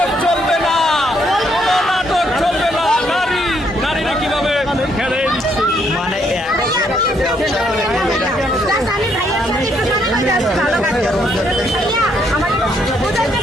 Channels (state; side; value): normal; both; correlation 0.72